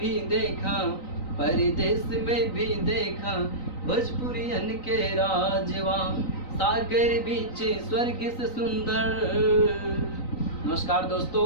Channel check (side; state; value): right; late; 3.9 ms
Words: देखा, परदेश में भी देखा, भोजपुरियन के राजवा। सागर बीच स्वर्ग से सुंदर। नमस्कार दोस्तों,